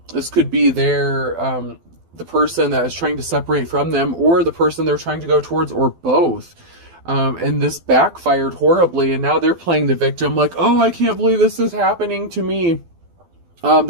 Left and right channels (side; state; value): left; late; 12 ms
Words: This could be the person that is trying to separate from them, or the person they're trying to go towards, or both. And this backfired horribly, and now they're playing the victim like, oh, I can't believe this is happening to me.